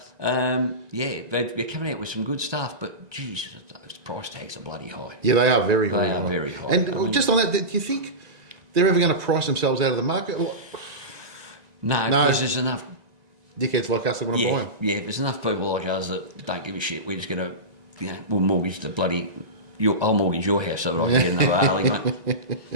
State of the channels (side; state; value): left; late; 1.9 ms